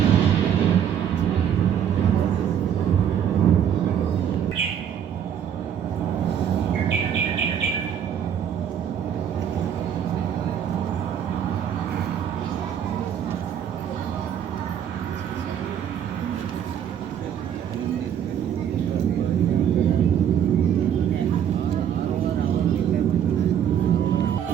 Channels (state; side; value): quieter; left; 9.0 dB